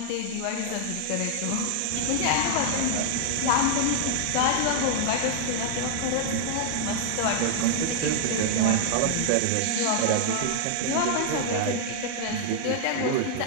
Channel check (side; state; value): both; different; correlation 0.00